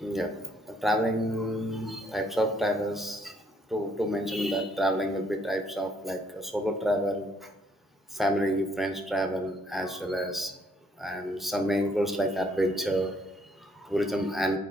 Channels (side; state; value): both; normal; correlation 0.67